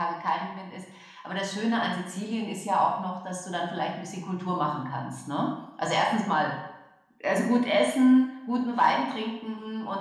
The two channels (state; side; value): identical; both; correlation 1.00